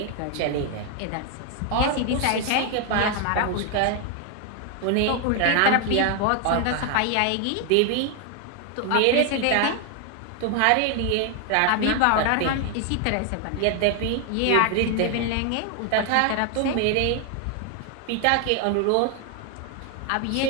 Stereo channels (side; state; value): both; different; correlation 0.00